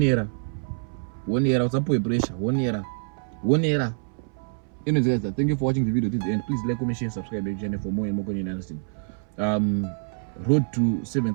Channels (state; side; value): silent; left; 61 dB below the other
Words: era usapuwe pressure. One era. Anyways guys, thank you for watching the video to the end. Please like, comment, share, subscribe to the channel for more and more content. Understand? Road to